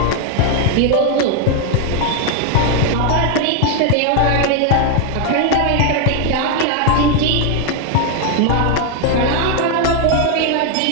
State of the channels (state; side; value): different; both; correlation 0.00